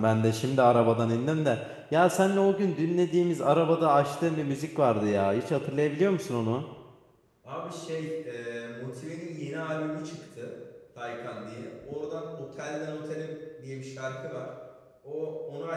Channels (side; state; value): both; identical; correlation 1.00